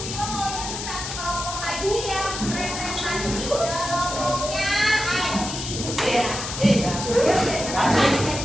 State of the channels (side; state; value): left; noise; hiss, 6 dB below the sound